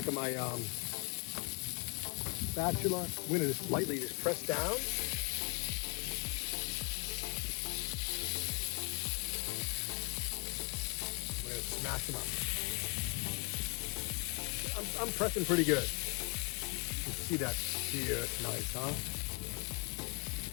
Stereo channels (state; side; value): quieter; right; 29.8 dB